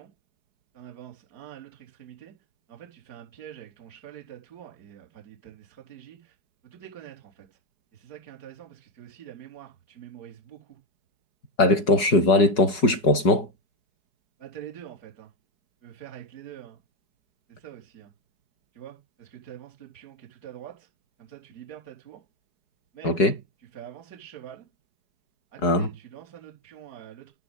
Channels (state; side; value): late; right; 4.8 ms